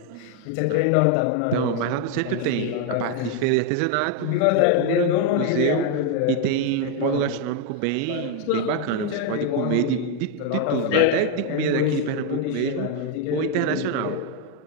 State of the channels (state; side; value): different; both; correlation 0.01